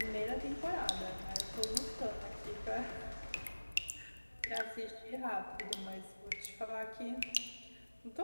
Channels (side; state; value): both; inverted; correlation -1.00